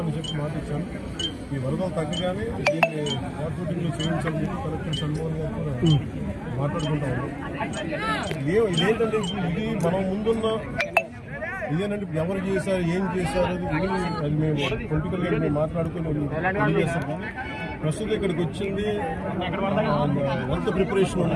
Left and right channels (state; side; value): identical; both; correlation 1.00